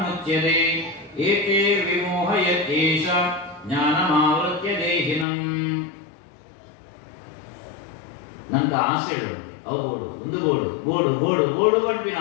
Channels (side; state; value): right; drops out; at 5.2 s